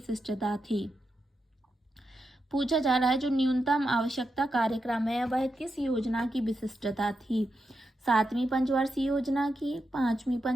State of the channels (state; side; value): normal; both; correlation 0.87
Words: थी? पूछा जा रहा है जो न्यूनतम आवश्यकता कार्यक्रम है वह किस योजना की विशिष्टता थी? 7वीं पंचवर्षीय योजना की, 5वीं